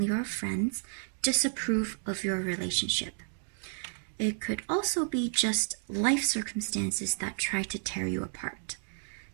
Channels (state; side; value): silent; left; digital silence